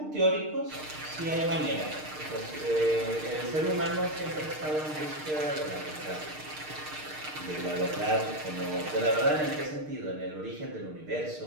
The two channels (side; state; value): left; late; 6.6 ms